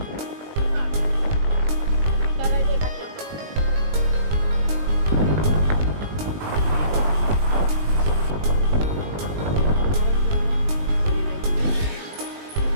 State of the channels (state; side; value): late; left; 20 ms